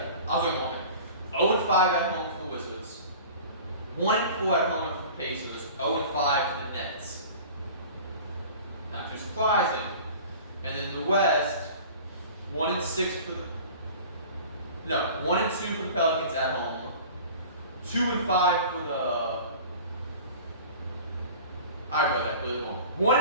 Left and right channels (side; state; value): both; inverted; correlation -0.41